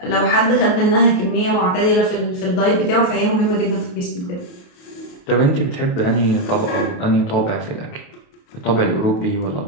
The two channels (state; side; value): late; right; 28 ms